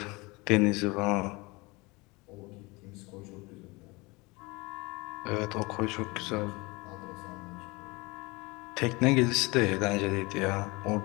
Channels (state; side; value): quieter; right; 24.8 dB